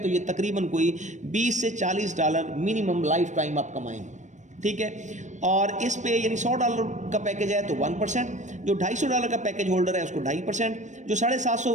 ये तकरीबन कोई $20 से $40 मिनिमम लाइफ टाइम आप कमाएंगे। ठीक है। और इस पे यानी $100 का पैकेज है तो 1%, जो $250 का पैकेज होल्डर है उसको 2.5%, जो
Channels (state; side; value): late; left; 0.35 ms